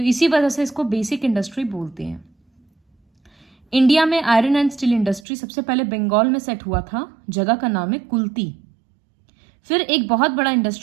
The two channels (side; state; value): left; drops out; at 5.2 s